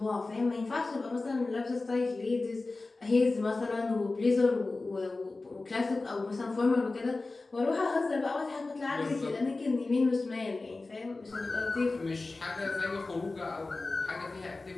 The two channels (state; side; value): quieter; right; 3.4 dB